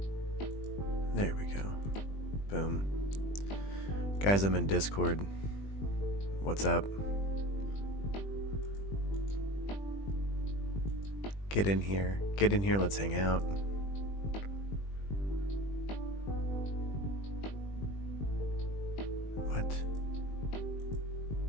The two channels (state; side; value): late; right; 20 ms